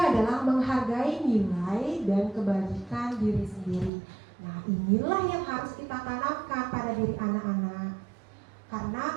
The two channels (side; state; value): left; drops out; at 3.9 s